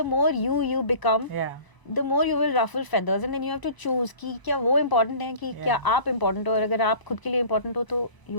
the more you become, Yeah. the more you will ruffle feathers, and then you have to choose कि क्या वो important है कि क्या आप important हो, और अगर आप खुद के लिए important हो तो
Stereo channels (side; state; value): right; late; 1.0 ms